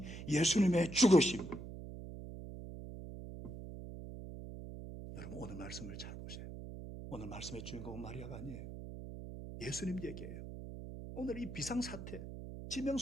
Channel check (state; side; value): noise; right; hum, 10 dB below the sound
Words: 예수님의 죽으심. 여러분 오늘 말씀을 잘 보세요. 오늘 말씀의 주인공은 마리아가 아니에요. 예수님 얘기예요. 오늘 이 비상사태,